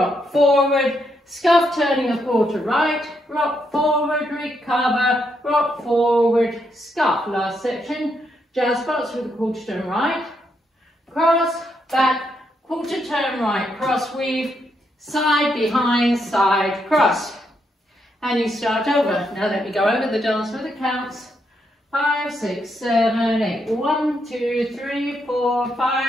forward, scuff turning a quarter right, rock forward, recover, rock forward, scuff. Last section, jazz box with a quarter turn right, cross, back, quarter turn right, cross weave, side, behind, side, cross. And you start over. Now let me go over the dance with the counts. 5, 6, 7, 8. 1, 2, 3, 4,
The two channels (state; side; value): normal; both; correlation 0.79